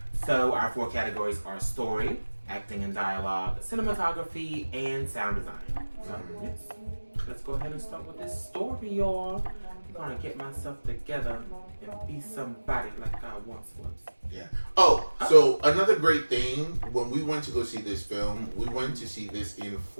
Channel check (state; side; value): inverted; both; correlation -1.00